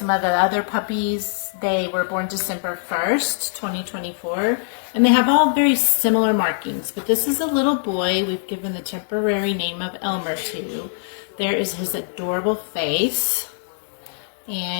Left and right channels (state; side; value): silent; right; digital silence